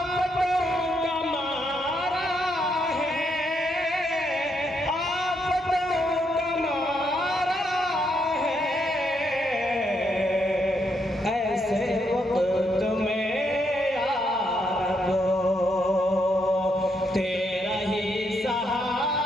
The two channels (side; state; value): both; normal; correlation 0.77